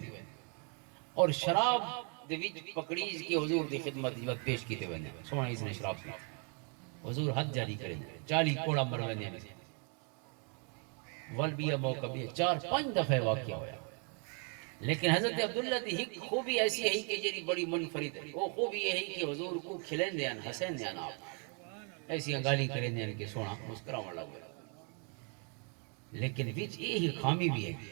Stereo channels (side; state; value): left; quieter; 38.9 dB